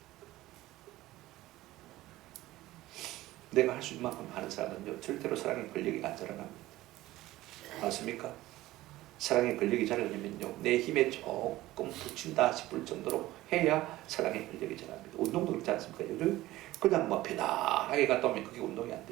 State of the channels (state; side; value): quieter; left; 16.8 dB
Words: 내가 할 수 있는 만큼 하는 사람은요 절대로 사랑의 권력이 안 자라납니다. 맞습니까? 사랑의 권력이 자라려면요 내 힘에 조금 붙인다 싶을 정도로 해야 사랑의 권력이 자랍니다. 운동도 그렇지 않습니까? 요즘 그냥 뭐 편안하게 갔다 오면 그게 운동이 안